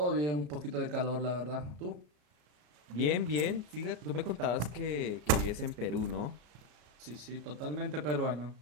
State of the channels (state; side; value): late; left; 34 ms